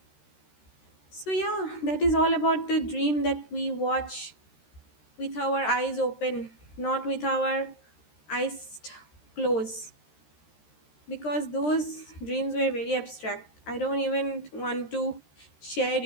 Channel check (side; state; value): right; late; 13 ms